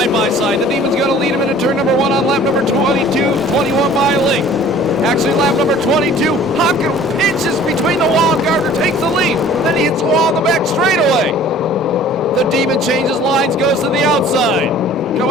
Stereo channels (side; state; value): both; normal; correlation 0.49